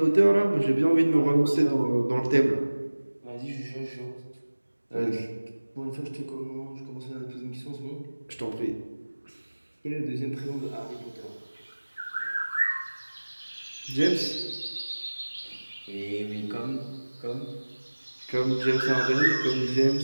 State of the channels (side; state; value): both; inverted; correlation -1.00